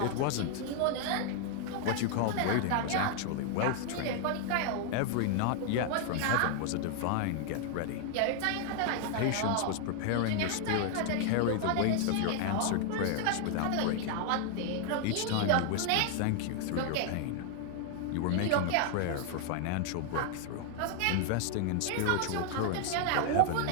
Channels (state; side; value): different; both; correlation 0.00